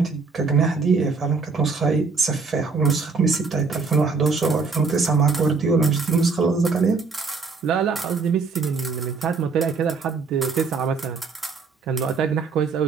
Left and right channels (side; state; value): left; quieter; 4.6 dB